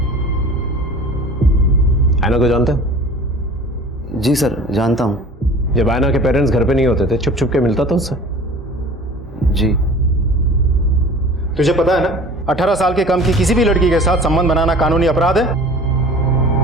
ऐना को जानते हो? जी सर, जानता हूँ। जब ऐना के पेरेंट्स घर पे नहीं होते थे छुप छुप के मिलता था उससे? जी। तुझे पता है ना, 18 साल के कम की किसी भी लड़की के साथ संबंध बनाना कानूनी अपराध है।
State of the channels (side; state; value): both; normal; correlation 0.43